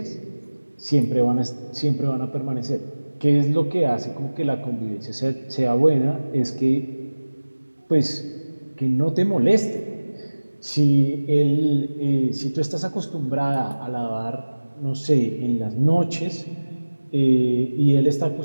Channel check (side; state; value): both; inverted; correlation -1.00